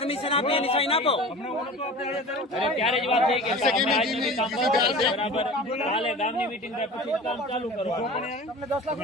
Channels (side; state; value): both; normal; correlation 0.37